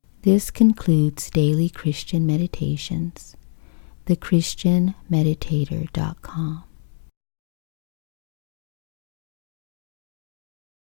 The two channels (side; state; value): right; silent; digital silence